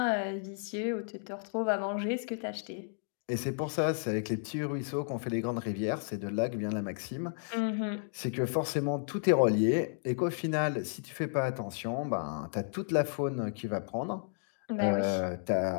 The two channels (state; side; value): silent; right; digital silence